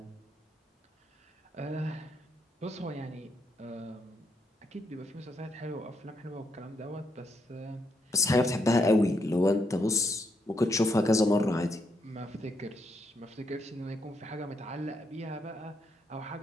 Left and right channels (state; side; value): normal; both; correlation 0.78